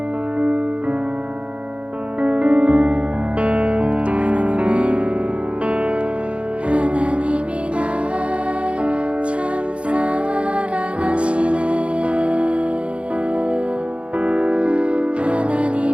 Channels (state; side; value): late; left; 0.060 ms